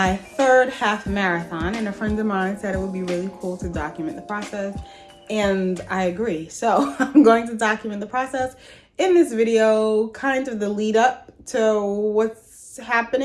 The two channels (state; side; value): identical; both; correlation 1.00